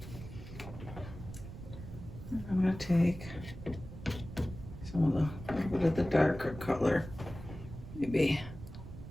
I'm gonna take some of the, a little bit of the darker color, maybe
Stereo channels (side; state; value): right; noise; rumble, 12 dB below the sound